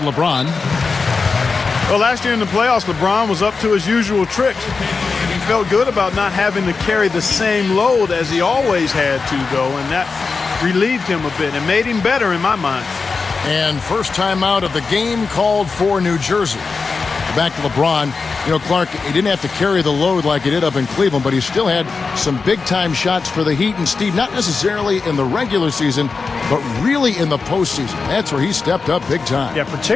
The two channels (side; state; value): right; quieter; 4.6 dB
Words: Well, last year in the playoffs, LeBron was up to his usual tricks. He felt good about not having to carry the same load as he always had to, though, and that relieved him a bit and made him better in my mind. And first time out of the game called for New Jersey. Back to LeBron. You know, Clark, he didn't have to carry the load like he did up in Cleveland, but he still had some big-time shots for the Heat. And Steve, not necessarily in the regular season, but really in the postseason. That's where he stepped up big time. Yeah,